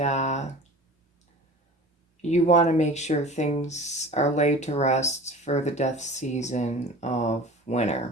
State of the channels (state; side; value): normal; both; correlation 0.39